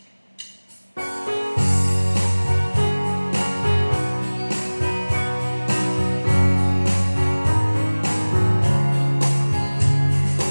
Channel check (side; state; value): both; inverted; correlation -1.00